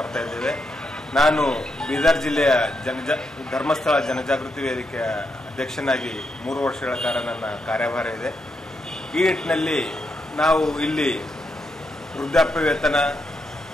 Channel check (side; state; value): both; normal; correlation 0.82